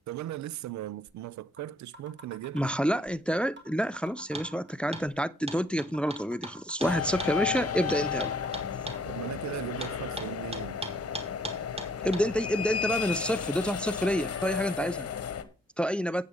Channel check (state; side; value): normal; both; correlation 0.63